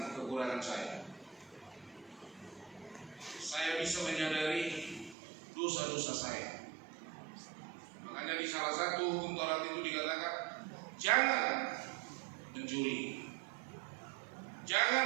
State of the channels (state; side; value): drops out; left; at 5.2 s